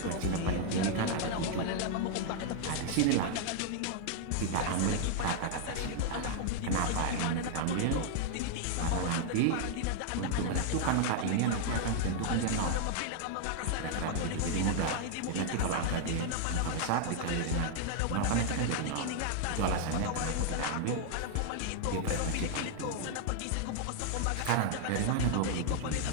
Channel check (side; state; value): both; different; correlation 0.00